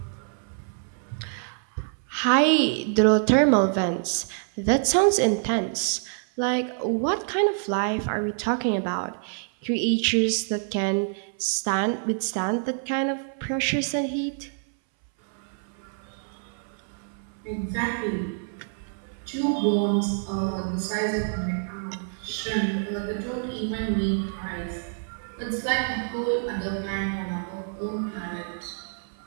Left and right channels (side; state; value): left; silent; 60 dB below the other